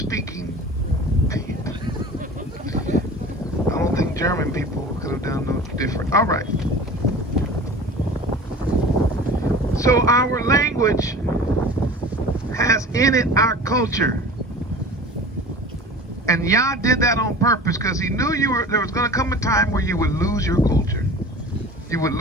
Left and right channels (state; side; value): normal; both; correlation 0.39